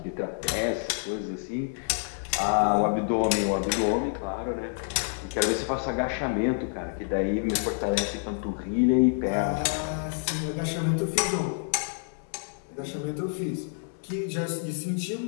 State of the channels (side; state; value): right; silent; digital silence